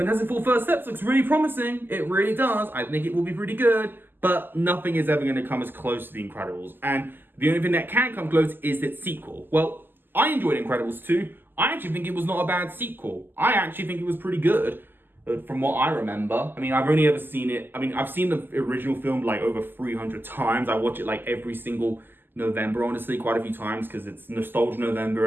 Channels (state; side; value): late; left; 0.094 ms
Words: Four First Steps looks really promising. It really does. I think it will be pretty good. But nothing is ever going to come as close to The Incredibles. And the only thing that can come close is its sequel. Well, I enjoyed Incredibles 2. I actually think it was not a bad sequel. I actually think it was pretty good from what I remember. I mean, I've only ever seen it. I mean, I've seen the original film like over 300 times. I watch it like every single November, honestly, quite a few times because it's Nostalgia November